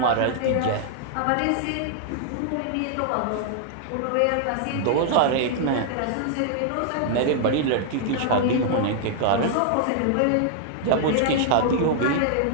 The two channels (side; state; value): both; different; correlation -0.01